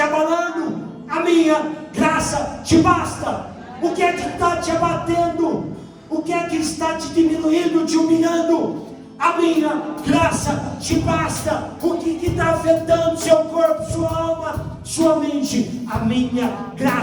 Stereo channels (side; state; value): both; identical; correlation 1.00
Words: abalando? A minha graça te basta. O que é que está te abatendo? O que é que está te diminuindo, te humilhando? A minha graça te basta. O que está afetando seu corpo, sua alma, sua mente? A minha